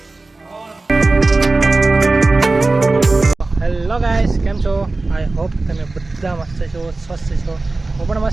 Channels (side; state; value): left; quieter; 3.3 dB